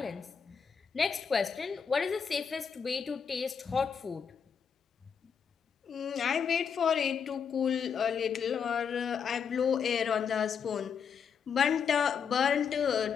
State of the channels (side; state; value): right; quieter; 6.8 dB